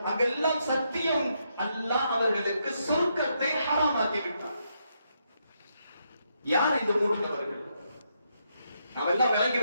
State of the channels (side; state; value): both; inverted; correlation -0.79